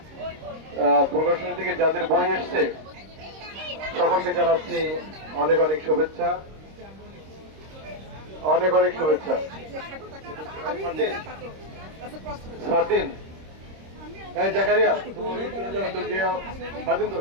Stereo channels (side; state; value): left; late; 26 ms